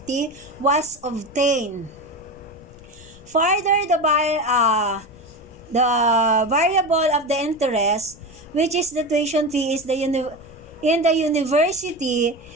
was obtained. Further, the variable of the interest, which is the tuition fee, is in the university,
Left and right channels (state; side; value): noise; left; rumble, 22 dB below the sound